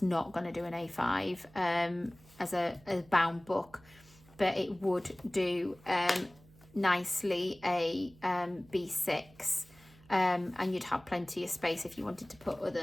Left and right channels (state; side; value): noise; right; hum, 25 dB below the sound